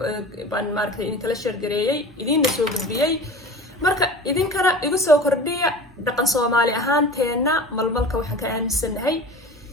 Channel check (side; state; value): both; normal; correlation 0.37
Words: baan maaragtay idinkala sheergareeyey, idiinna soo gudbiyey. marka idinkana igu soo kordhiya dhaqan Soomaali ahaanteenna malmalka waxaan ka aaminsanahay,